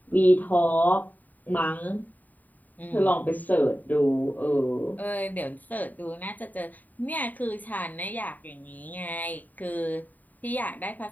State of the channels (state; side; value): late; right; 0.083 ms